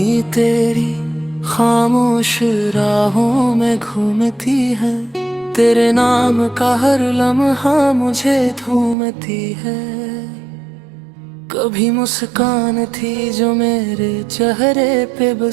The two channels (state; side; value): drops out; left; at 9.0 s